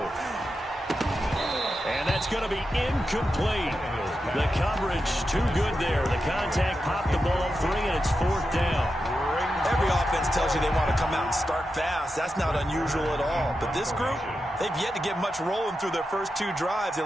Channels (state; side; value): normal; both; correlation 0.89